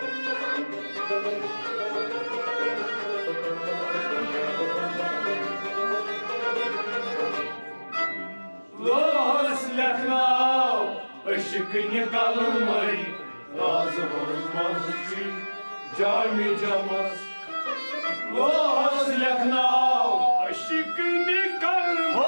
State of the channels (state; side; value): inverted; both; correlation -1.00